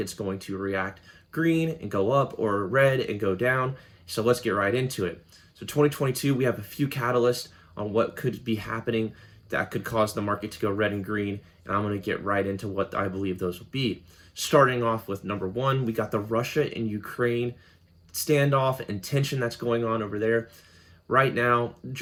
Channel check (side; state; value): both; identical; correlation 1.00